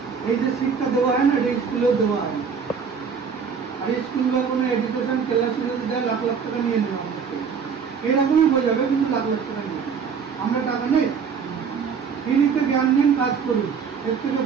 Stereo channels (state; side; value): quieter; left; 6.2 dB